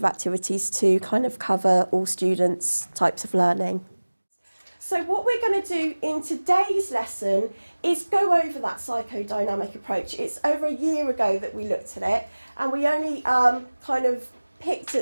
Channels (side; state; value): both; inverted; correlation -1.00